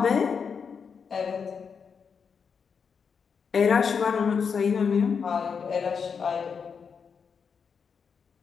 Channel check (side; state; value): right; quieter; 6.1 dB